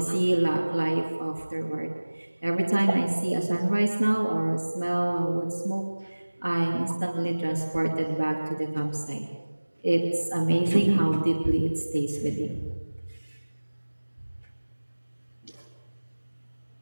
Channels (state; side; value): inverted; both; correlation -1.00